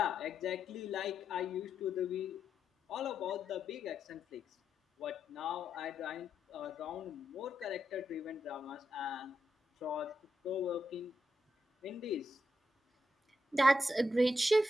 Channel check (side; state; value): both; normal; correlation 0.83